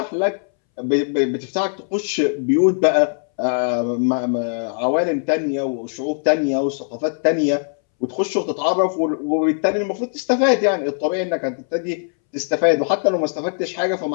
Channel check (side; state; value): right; silent; 64 dB below the other